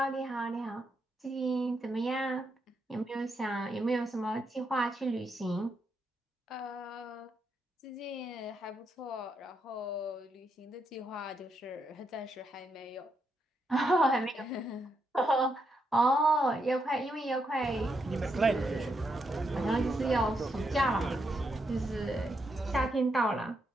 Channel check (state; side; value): normal; both; correlation 0.80